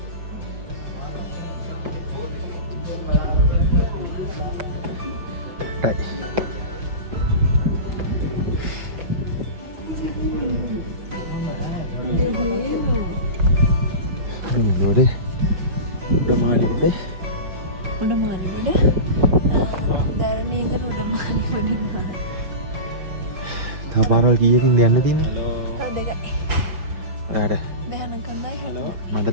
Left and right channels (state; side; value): late; left; 5.9 ms